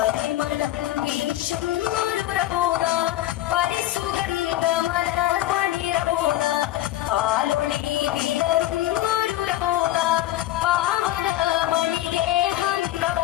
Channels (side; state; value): right; quieter; 14.6 dB